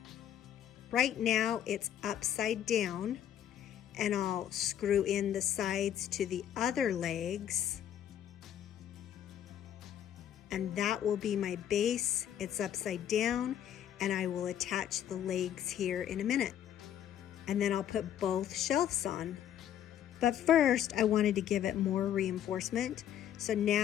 Right now it's upside down, and I'll screw in the sides to the other legs. And that will be my base. It's upside down, and I will attach the legs here in a minute. And then I'll put both shelves on. But first, I wanted to give it more reinforcement. So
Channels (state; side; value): quieter; right; 10.4 dB